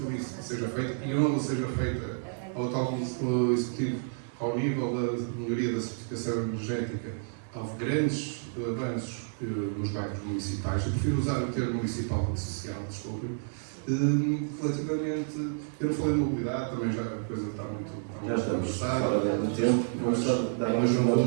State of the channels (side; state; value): left; silent; digital silence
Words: isso seja feito, e onde seja feita ao tal executivo, ao nível da melhoria da certificação energética, houve grandes avanços nos bairros municipais. Eu prefiro usar o termo municipal e social, desculpe. Relativamente, eu não falei de mobilidade, também já a coisa está muito Já estamos avançada. fora do tempo. Vamos só dar Mas uma